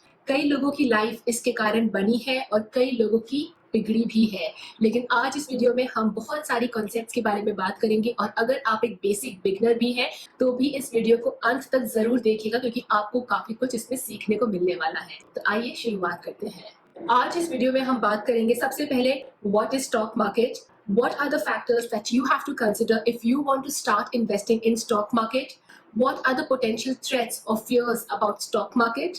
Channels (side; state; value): both; identical; correlation 1.00